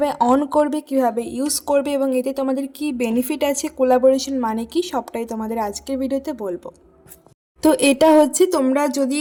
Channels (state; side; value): identical; both; correlation 1.00